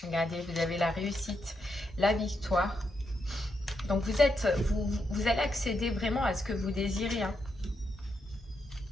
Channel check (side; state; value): both; normal; correlation 0.82